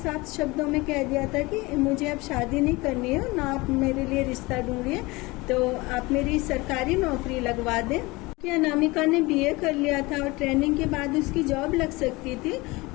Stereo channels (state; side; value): quieter; right; 22.9 dB